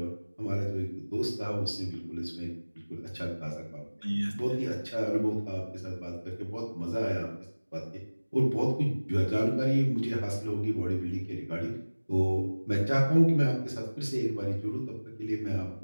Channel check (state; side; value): inverted; both; correlation -1.00